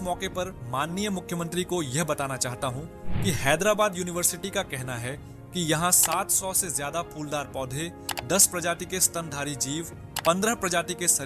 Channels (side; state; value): both; identical; correlation 1.00